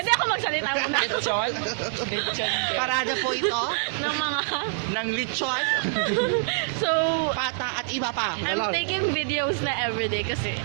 ako magsalita muna Lechon. Lechon. Parada po ito ng mga... ng lechon, So, pata at iba pa. I'm taking videos na everyday kasi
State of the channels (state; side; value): silent; left; digital silence